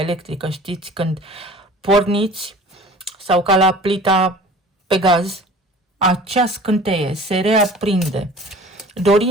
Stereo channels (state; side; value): normal; both; correlation 0.45